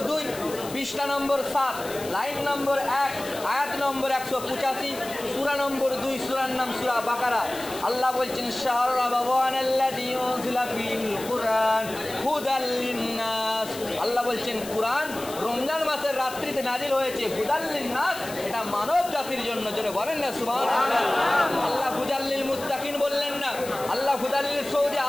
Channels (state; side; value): noise; left; hiss, 13 dB below the sound